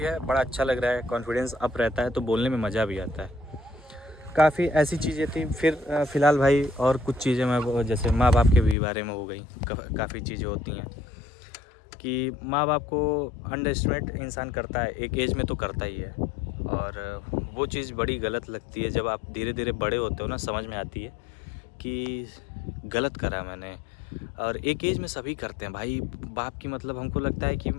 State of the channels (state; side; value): drops out; right; at 8.8 s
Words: बड़ा अच्छा लग रहा है, कॉन्फिडेंस अप रहता है, तो बोलने में मज़ा भी आता है। काफ़ी ऐसी चीज़ें थी। फिर फ़िलहाल भाई और कुछ चीज़ें मैं, जैसे माँ बाप के भी बारे में हो गई। काफ़ी चीज़ें होती हैं कि माँ बाप को अंडरएस्टिमेट इंसान करता है, एक एज में तो करता ही है, और वो चीज़ बड़ी गलत लगती है। जब आप धीरे धीरे बड़े होते हो ना, समझ में आती है कि गलत करा मैंने। और एक एज में सभी करते हैं भाई। बाप की मतलब हमको लगता है कि